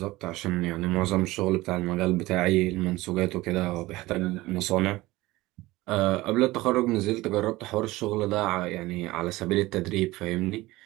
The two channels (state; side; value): quieter; left; 19.1 dB